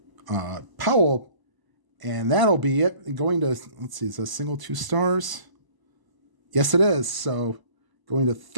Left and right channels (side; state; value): left; late; 1.0 ms